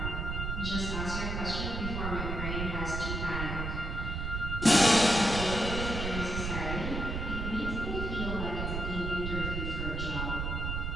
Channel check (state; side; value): noise; right; rumble, 3 dB below the sound